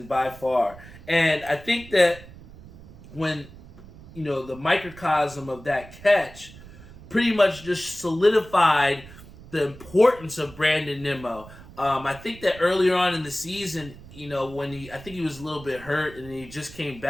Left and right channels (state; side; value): noise; right; rumble, 19 dB below the sound